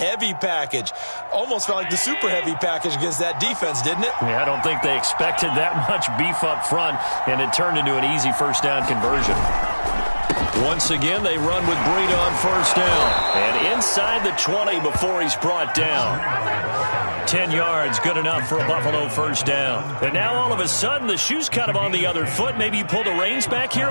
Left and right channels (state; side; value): inverted; both; correlation -1.00